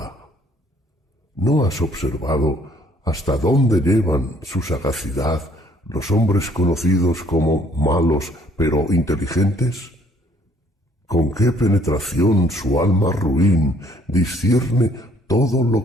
¿No has observado hasta dónde llevan su sagacidad los hombres conocidos como malos pero inteligentes? ¿Con qué penetración su alma ruin discierne todo lo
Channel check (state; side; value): normal; both; correlation 0.62